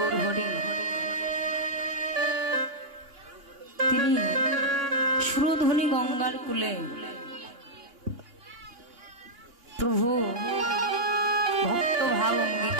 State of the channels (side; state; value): left; late; 2.9 ms